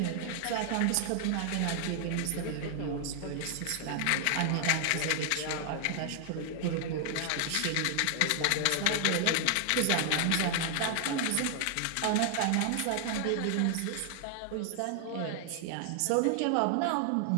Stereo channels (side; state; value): both; different; correlation 0.00